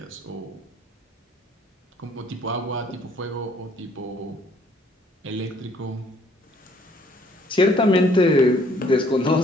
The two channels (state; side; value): normal; both; correlation 0.61